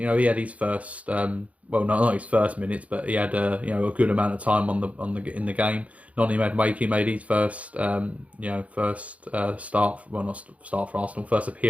know, he had his first, well, not his first minutes, but he had you know, a good amount of time in the game. Noni Madueke made his first, you know, first start, well, not start for Arsenal, first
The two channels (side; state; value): left; late; 0.066 ms